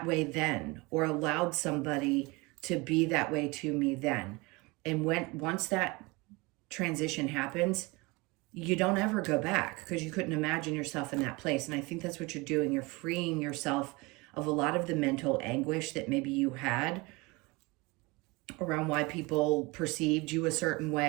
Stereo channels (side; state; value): left; quieter; 24.9 dB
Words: way then, or allowed somebody to be that way to me then? And once that transition happens, you don't ever go back, because you couldn't imagine yourself in that place. And I think that's what you're doing. You're freeing yourself of a lot of the mental anguish that maybe you had around why people perceived you a certain